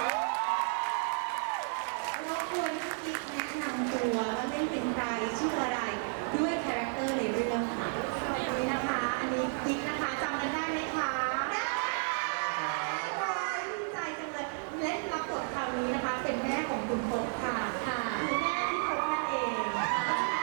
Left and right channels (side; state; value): left; silent; 56 dB below the other